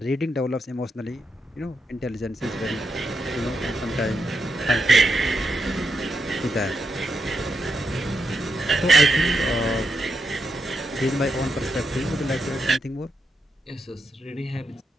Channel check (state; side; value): normal; both; correlation 0.84